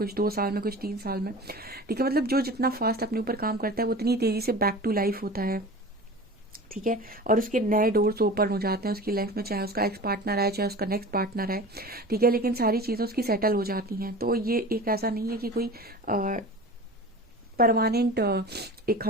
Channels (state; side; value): normal; both; correlation 0.36